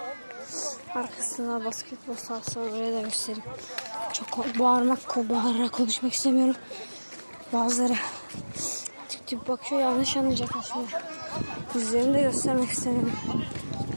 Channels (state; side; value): inverted; both; correlation -1.00